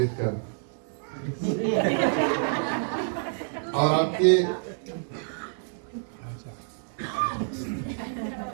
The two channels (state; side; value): silent; left; 59 dB below the other